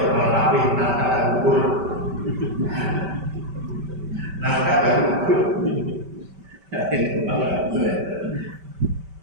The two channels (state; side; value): late; left; 5.2 ms